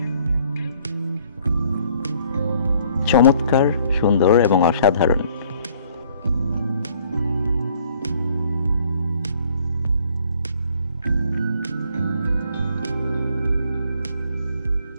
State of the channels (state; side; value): inverted; both; correlation -0.61